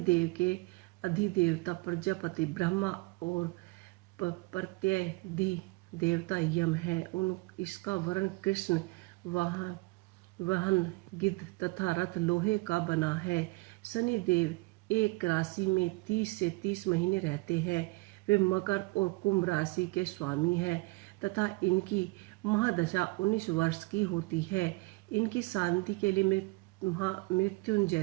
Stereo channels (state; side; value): quieter; left; 25.2 dB